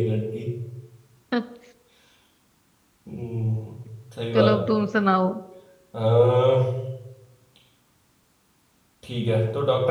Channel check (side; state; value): both; identical; correlation 1.00